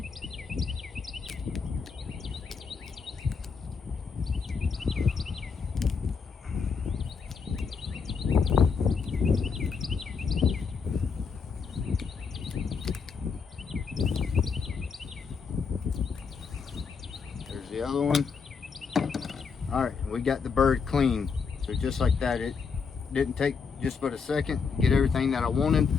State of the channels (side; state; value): right; quieter; 5.5 dB